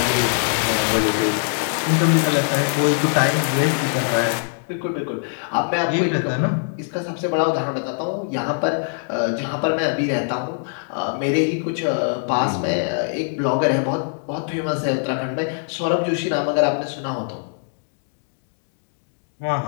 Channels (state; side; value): silent; right; digital silence